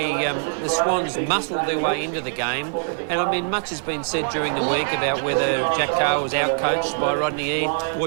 the Swans muscled their way into the game. And, I mean, much has been said during the week about whether Jack Carr was outcoached by Rodney Eade.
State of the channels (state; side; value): silent; left; digital silence